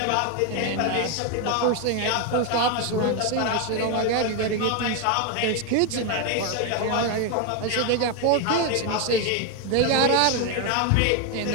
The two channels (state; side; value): different; both; correlation 0.01